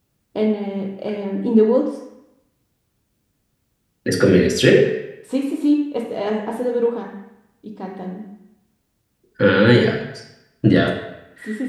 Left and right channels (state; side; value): identical; both; correlation 1.00